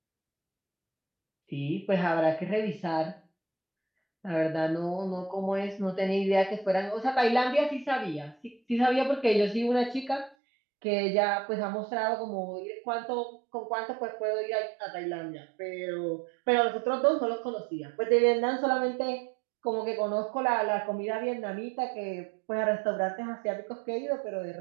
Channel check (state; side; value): drops out; left; at 10.4 s